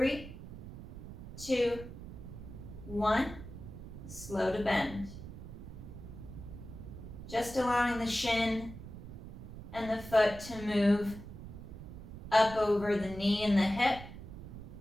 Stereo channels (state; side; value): noise; right; rumble, 12 dB below the sound